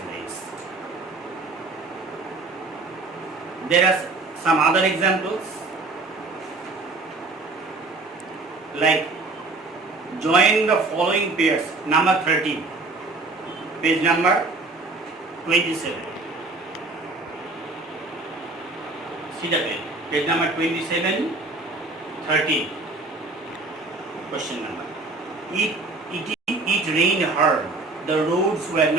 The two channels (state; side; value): quieter; left; 3.4 dB